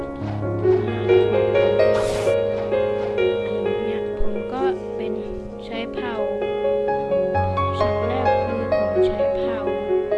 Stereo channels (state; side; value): identical; both; correlation 1.00